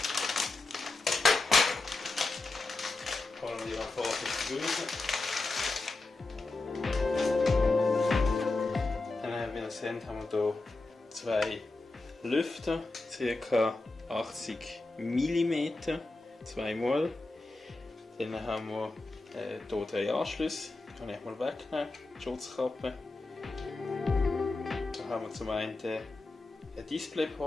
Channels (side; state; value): right; quieter; 3.3 dB